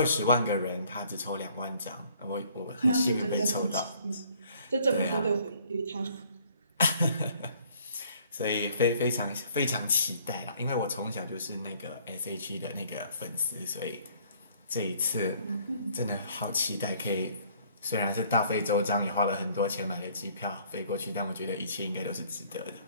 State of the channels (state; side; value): inverted; both; correlation -0.59